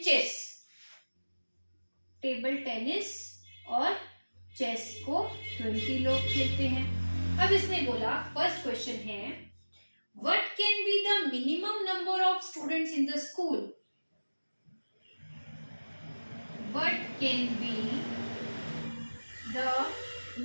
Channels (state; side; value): inverted; both; correlation -1.00